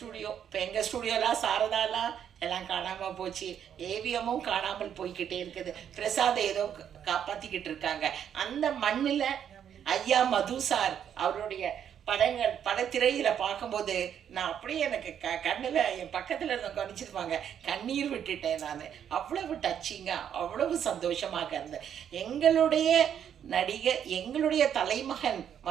இப்போ எங்கள் ஸ்டூடியோலாம் சாரதாலாம் எல்லாம் காணாமல் போச்சு, ஏவிஎம்மும் காணாமல் போய்கிட்டே இருக்குது. பிரசாத் ஏதோ காப்பாற்றிக்கிட்டு இருக்காங்க. அந்த மண்ணில் ஐயா மது சார் அவருடைய படத்திரையில் பார்க்கும்போது நான் அப்படியே எனக்கு கண்ணில் என் பக்கத்தில் இருந்த கவனிச்சிருப்பாங்க, கண்ணீர் விட்டுட்டேன் நான். அவ்வளவு டச்சிங்காக, அவ்வளவு சந்தோஷமாக இருந்தேன். எங்களுடைய நடிகை, எங்களுடைய தலைமகன்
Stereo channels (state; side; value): quieter; left; 9.0 dB